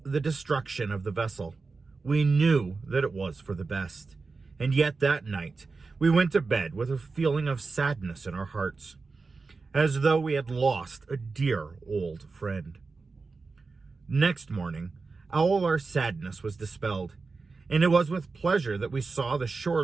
the destruction of the vessel. We knew that it was for the best, and yet that night we went to bed with a feeling of sadness in our hearts, as though we had lost a dear old friend. Next morning, all our sadness was dispelled, and it was with pleasure that we saw the shore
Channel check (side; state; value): left; quieter; 4.2 dB